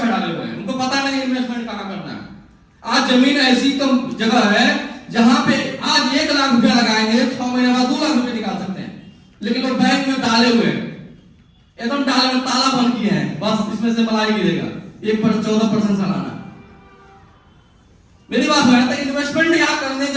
डाले हुए हैं, उनको पता नहीं इन्वेस्टमेंट कहां करना है। आज जमीन ऐसी जगह है जहां पे आज 1 लाख रुपया लगाएंगे, 6 महीने बाद 2 लाख रुपए निकाल सकते हैं, लेकिन वो बैंक में डाले हुए हैं, एकदम डाले में ताला बंद किए हैं, बस इसमें से मलाई गिरेगा 14% सालाना। मेरी बात है, तो इन्वेस्टमेंट यहाँ करने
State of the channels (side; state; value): both; identical; correlation 1.00